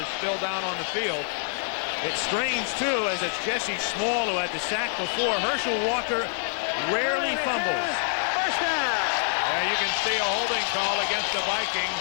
still down on the field. It's strange, too, as it's Jesse Small who had the sack before. Herschel Walker rarely fumbles. First down. Yeah, you can see a holding call against the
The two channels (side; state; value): right; silent; digital silence